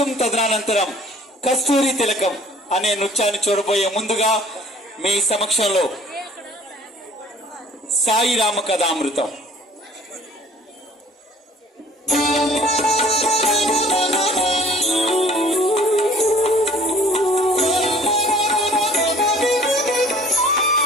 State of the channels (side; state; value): both; normal; correlation 0.52